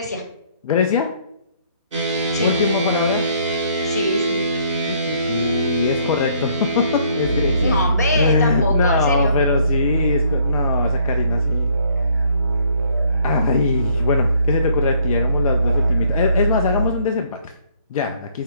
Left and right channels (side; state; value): both; inverted; correlation -0.63